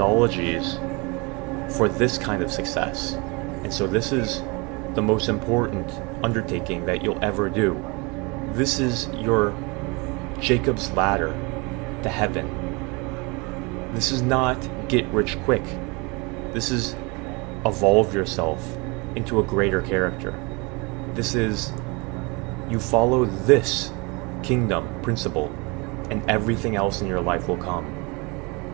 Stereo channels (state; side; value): quieter; left; 28.0 dB